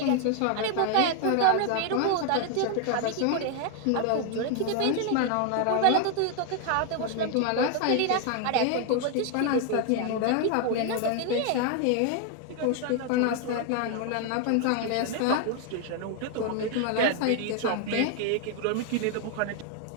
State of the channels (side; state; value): both; different; correlation 0.01